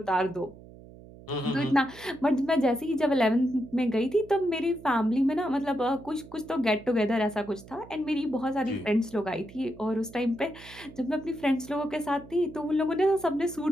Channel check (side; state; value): right; noise; hum, 19 dB below the sound